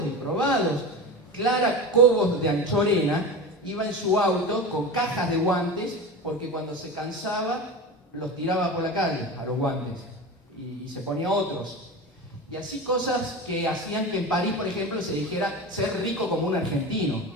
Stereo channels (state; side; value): normal; both; correlation 0.27